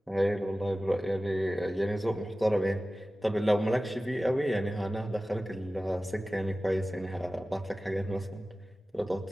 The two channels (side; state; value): both; normal; correlation 0.96